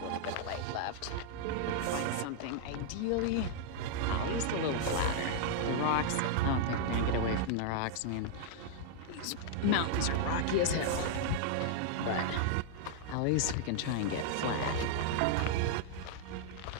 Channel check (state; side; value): different; both; correlation -0.01